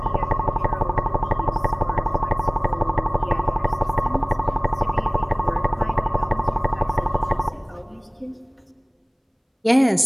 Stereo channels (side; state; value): both; identical; correlation 1.00